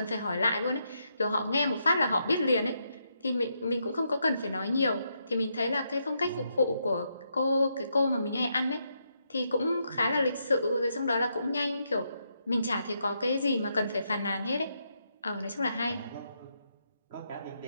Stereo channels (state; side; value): inverted; both; correlation -0.80